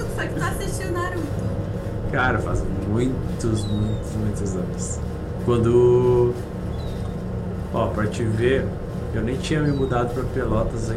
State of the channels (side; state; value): both; identical; correlation 1.00